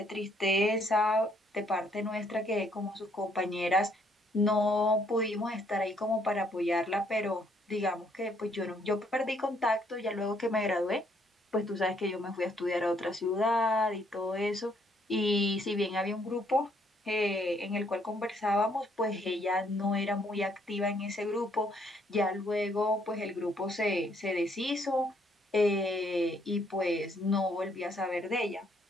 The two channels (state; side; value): normal; both; correlation 0.68